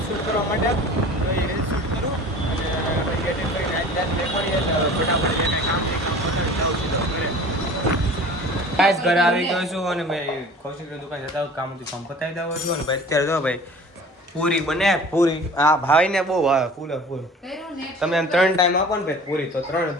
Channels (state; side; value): normal; both; correlation 0.43